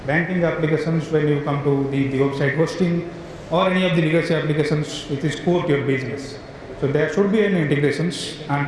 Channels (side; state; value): both; identical; correlation 1.00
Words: banking applications when you come to the website hosting, or any of the legacy applications which is core to your business. So there should be any integrations,